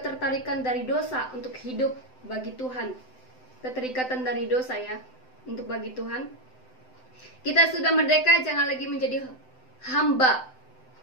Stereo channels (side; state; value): right; late; 7.8 ms